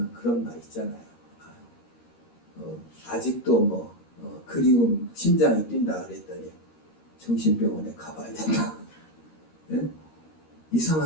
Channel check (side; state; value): right; late; 13 ms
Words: 그런 말 있잖아요. 아직도 뭐 그리움 심장이 뛴다 그랬더니 정신병원에 가봐야 된다. 예?